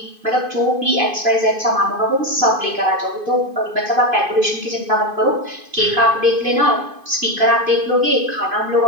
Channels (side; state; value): left; late; 2.5 ms